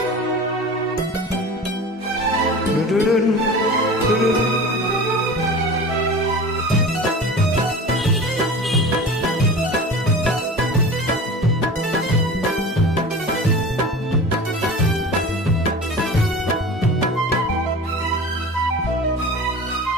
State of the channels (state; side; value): normal; both; correlation 0.35